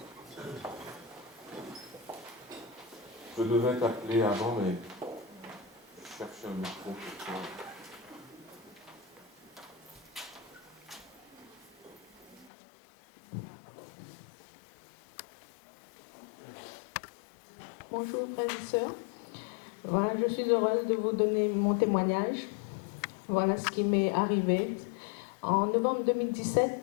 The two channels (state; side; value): drops out; right; at 12.5 s